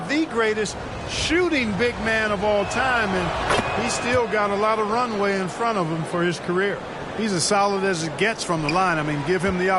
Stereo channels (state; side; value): identical; both; correlation 1.00